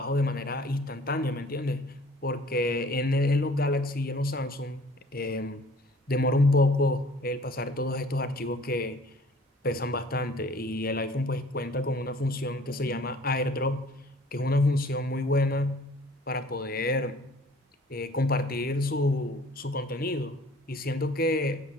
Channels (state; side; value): normal; both; correlation 0.51